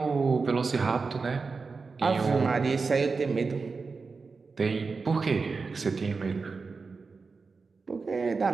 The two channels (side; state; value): left; quieter; 4.5 dB